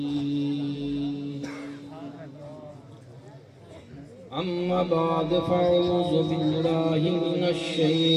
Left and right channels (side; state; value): both; identical; correlation 1.00